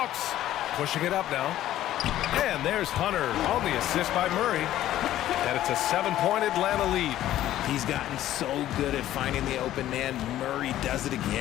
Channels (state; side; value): quieter; right; 13.2 dB